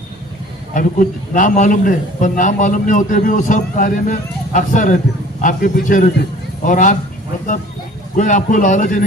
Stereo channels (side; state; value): both; normal; correlation 0.49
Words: अभी कुछ नाम मालूम नहीं, पर नाम मालूम नहीं होते भी वो सब कार्य में अक्सर रहते, आपके पीछे रहते। और आप मतलब कोई आपको लालच ही